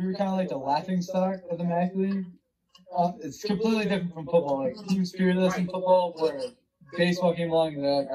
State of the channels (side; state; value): both; identical; correlation 1.00